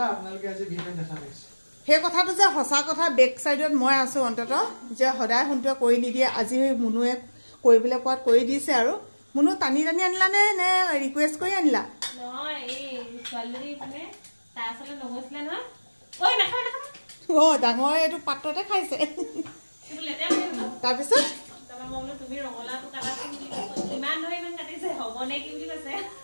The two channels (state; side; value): inverted; both; correlation -1.00